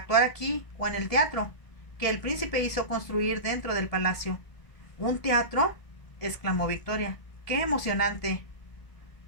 aquí o en el teatro, que el príncipe hizo construir dentro del palacio. ¿Un teatro?, exclamó Victoria. ¡Qué emocionante!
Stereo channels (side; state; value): right; late; 1.8 ms